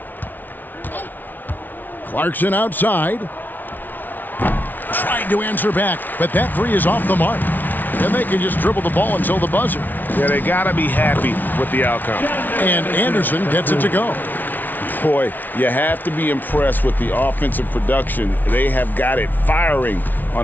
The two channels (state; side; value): late; right; 0.085 ms